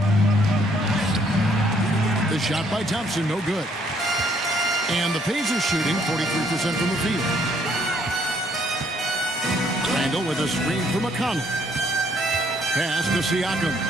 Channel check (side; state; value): both; normal; correlation 0.66